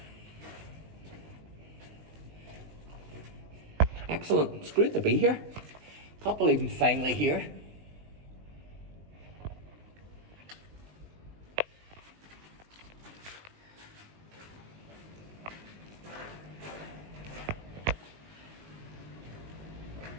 Excellent, it's great to be here. Can't believe I'm finally here.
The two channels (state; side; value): late; left; 19 ms